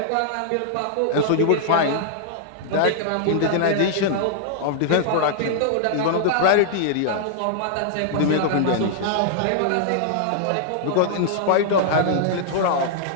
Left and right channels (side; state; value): both; different; correlation -0.01